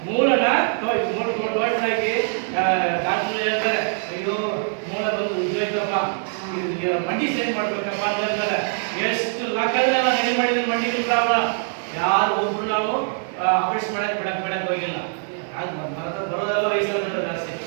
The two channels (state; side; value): silent; left; 62 dB below the other